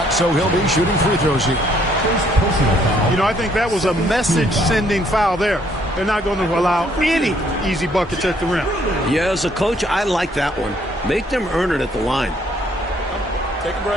so he'll be shooting free throws here. You know, I think that was a message-sending foul there. They're not going to allow any easy buckets at the rim. Yeah, as a coach, I like that one. Make them earn it at the line. Take a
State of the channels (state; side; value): normal; both; correlation 0.66